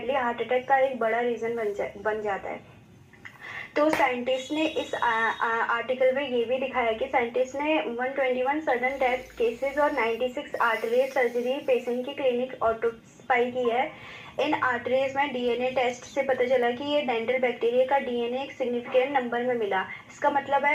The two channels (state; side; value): identical; both; correlation 1.00